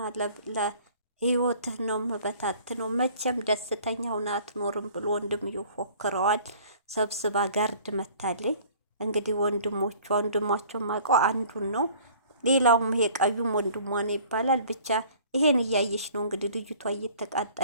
ለህይወትህ ነው መበታት ነው መቼም ደስተኛ ሆና አትኖርም ብሎ ወንድም ይፎክረዋል። ሰብስባ ጋርድ መታለኝ። እንግዲህ ወንድሟቸው ማውቀው አንዱን ነው። ሌላውም ይሄ ቀዩም ወንድሟ ነው ይባላል። ብቻ ይሄን እያየች ነው እንግዲህ ልጅቷ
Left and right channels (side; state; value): both; inverted; correlation -0.51